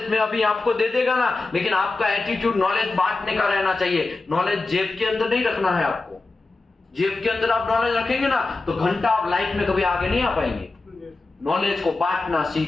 में अभी आपको दे देगा ना, लेकिन आपका एटीट्यूड नॉलेज बांटने का रहना चाहिए। नॉलेज जेब के अंदर नहीं रखना है आपको। जेब के अंदर आप नॉलेज रखेंगे ना, तो घंटा आप लाइफ में कभी आगे नहीं आ पाएंगे। नॉलेज को बांटना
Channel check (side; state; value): right; quieter; 3.5 dB